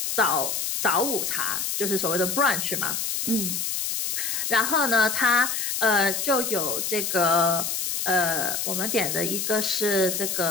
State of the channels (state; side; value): noise; left; hiss, 1 dB below the sound